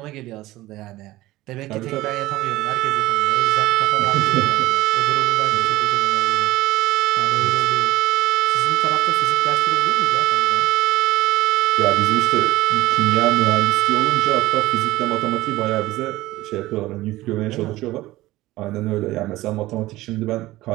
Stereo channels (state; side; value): quieter; left; 17.5 dB